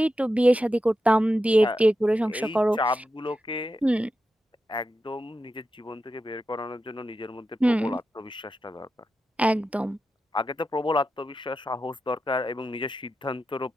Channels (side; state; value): both; normal; correlation 0.89